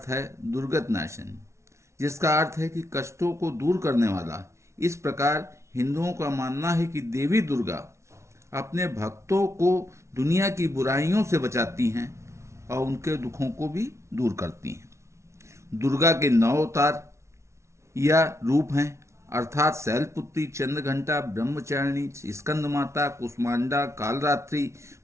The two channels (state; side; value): late; left; 0.13 ms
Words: है दुर्गत नाशन, जिसका अर्थ है कि कष्टों को दूर करने वाला। इस प्रकार हिंदुओं का मानना है कि देवी दुर्गा अपने भक्तों को दुनिया की बुराइयों से बचाती हैं और उनके दुखों को भी दूर करती हैं। दुर्गा के 9 अवतार या रूप हैं, अर्थात शैलपुत्री, चंद्रघंटा, ब्रह्मचारिणी, स्कंद माता, कुष्मांडा, कालरात्रि,